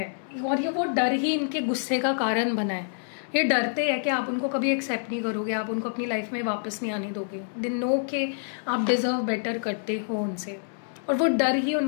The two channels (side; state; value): right; silent; 60 dB below the other